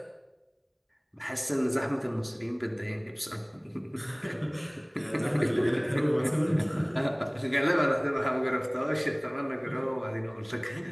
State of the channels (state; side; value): identical; both; correlation 1.00